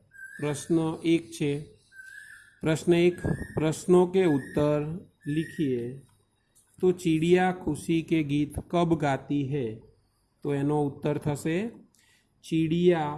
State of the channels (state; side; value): identical; both; correlation 1.00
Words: प्रश्न 1 छे। प्रश्न 1, प्रश्नों के उत्तर लिखिए। तो चिड़िया खुशी के गीत कब गाती है? तो एनो उत्तर थशे चिड़िया